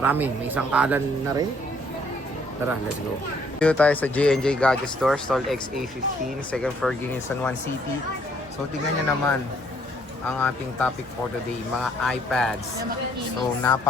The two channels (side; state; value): both; normal; correlation 0.65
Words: may isang kalan na rin. Tara, let's go. Dito tayo sa J&J Gadget Store, stall XA15, second floor, Greenwich, San Juan City. So tingnan nyo naman ang ating topic for today, mga iPads. So